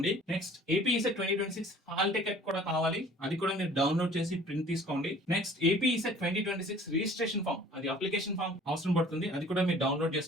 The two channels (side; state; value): both; normal; correlation 0.50